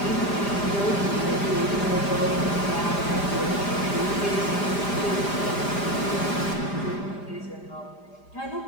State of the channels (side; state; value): right; late; 5.0 ms